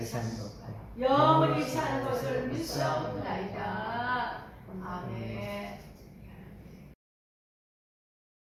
사는 것과 영원히 사는 것을 믿사옵나이다. 아멘.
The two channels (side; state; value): both; identical; correlation 1.00